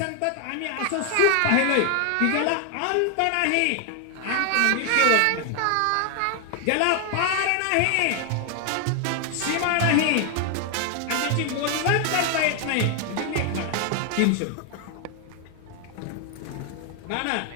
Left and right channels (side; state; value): both; different; correlation 0.00